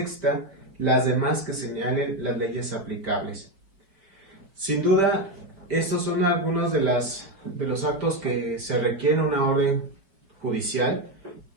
las demás que señalen las leyes aplicables. Sin duda, estos son algunos de los actos que se requieren una orden judicial,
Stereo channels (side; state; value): left; late; 5.1 ms